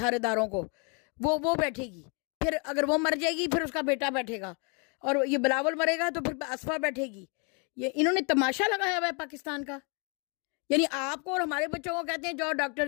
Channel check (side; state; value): right; quieter; 34.8 dB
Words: اداروں کو, وہ بیٹھے گی. پھر اگر وہ مر جائے گی پھر اس کا بیٹا بیٹھے گا, اور یہ بلاول مرے گا تو پھر اسفا بیٹھے گی. یہ انہوں نے تماشا لگایا ہوا ہے پاکستان کا. یعنی آپ کو اور ہمارے بچوں کو کہتے ہیں جاؤ ڈاکٹر